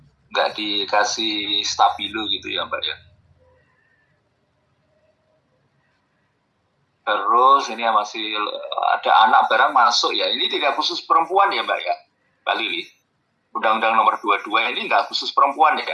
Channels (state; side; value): identical; both; correlation 1.00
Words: nggak dikasih stabilo gitu ya Mbak ya. Terus ini masih ada anak barang masuk ya. Ini tidak khusus perempuan ya Mbak ya, Mbak Lili. Undang-undang nomor 22 ini nggak khusus perempuan